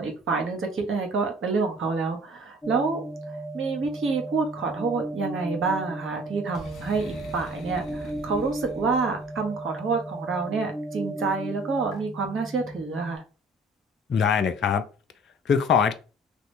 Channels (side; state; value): both; normal; correlation 0.51